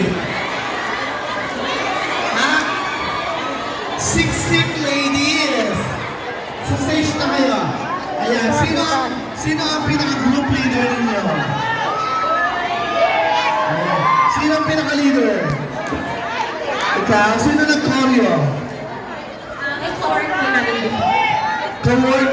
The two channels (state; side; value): identical; both; correlation 1.00